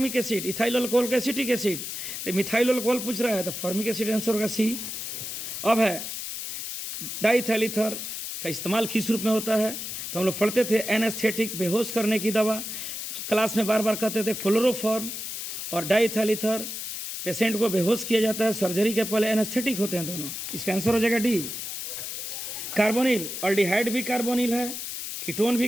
एसिड, इथाइल अल्कोहल को एसिटिक एसिड। तो मिथाइल अल्कोहल पूछ रहा है तो फॉर्मिक एसिड आंसर होगा सी। अब है डाइथैल का इस्तेमाल किस रूप में होता है? तो हम लोग पढ़ते थे एनेस्थेटिक, बेहोश करने की दवा। क्लास में बार बार कहते थे क्लोरोफॉर्म और डाइथैल पेशेंट को बेहोश किया जाता है, सर्जरी के पहले एनेस्थेटिक होते हैं दोनों। इसका आंसर हो जाएगा डी। कार्बोनिल, अल्डिहाइड भी कार्बोनिल है, कीटोन भी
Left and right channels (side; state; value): left; noise; hiss, 6 dB below the sound